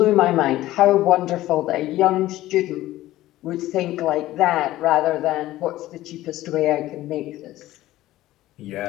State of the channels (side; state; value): right; quieter; 15.6 dB